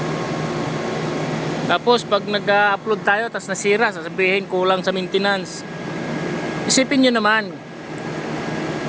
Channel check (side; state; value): both; identical; correlation 1.00